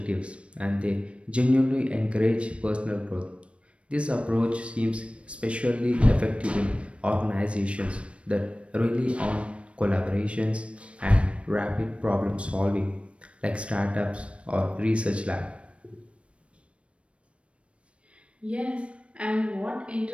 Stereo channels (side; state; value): left; late; 0.061 ms